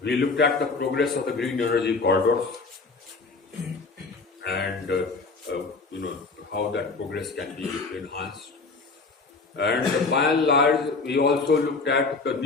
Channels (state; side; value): quieter; right; 4.0 dB